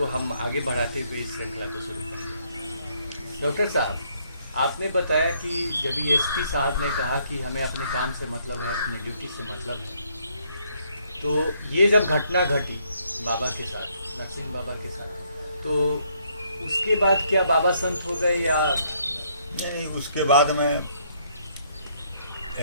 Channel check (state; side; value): inverted; both; correlation -0.69